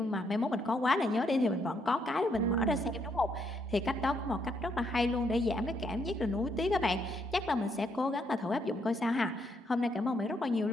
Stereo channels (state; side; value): normal; both; correlation 0.74